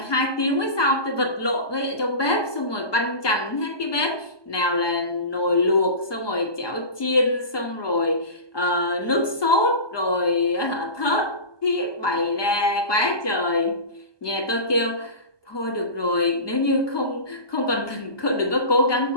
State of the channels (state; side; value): late; right; 1.2 ms